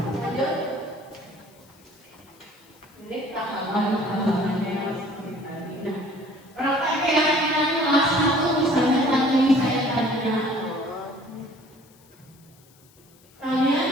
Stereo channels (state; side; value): noise; left; hiss, 29 dB below the sound